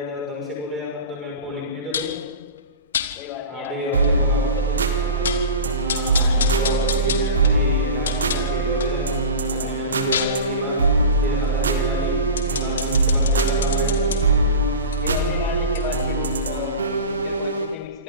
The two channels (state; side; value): inverted; both; correlation -0.33